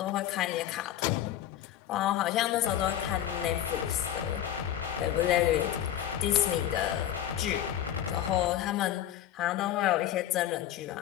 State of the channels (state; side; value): quieter; right; 11.5 dB